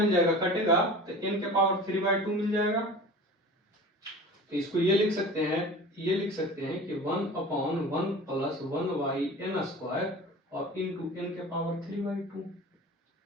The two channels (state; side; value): normal; both; correlation 0.38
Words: जाएगा, कटेगा तो n के पावर 3/2 मिल जाएगा, तो इसको ये लिख सकते हैं कि 1/1 प्लस 1/n स्क्वायर और इनटू n के पावर 3/2,